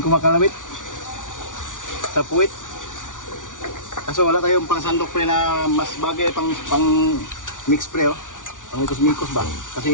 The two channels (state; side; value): late; right; 0.87 ms